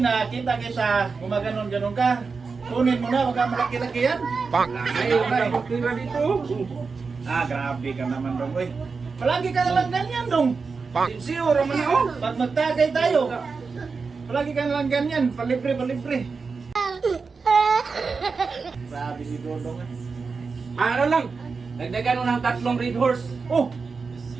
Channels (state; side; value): quieter; left; 4.8 dB